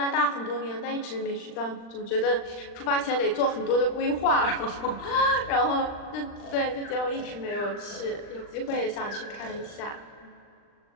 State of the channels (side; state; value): right; late; 39 ms